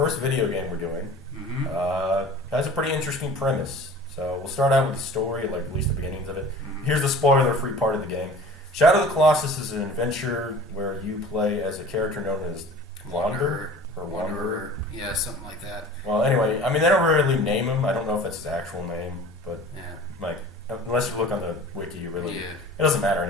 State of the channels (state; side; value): normal; both; correlation 0.42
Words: video game we're doing. Mm-hmm. Has a pretty interesting premise. So we'll start out with the story, like at least the beginnings of it. Mm-hmm. Here's the spoiler-free part of the game. Shadow of the Colossus is an adventure where you play as a character known as Wanderer. Yeah, something like that. Well, anyway, I mean, they don't really name him. I don't know if that's his actual name, but unless you look on the wiki, it doesn't matter